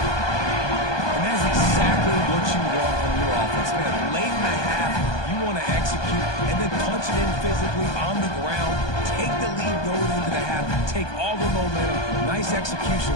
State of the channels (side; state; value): right; late; 1.2 ms